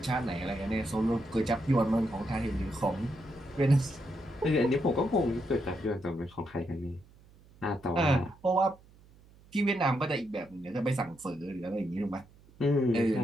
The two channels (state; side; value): noise; right; hum, 26 dB below the sound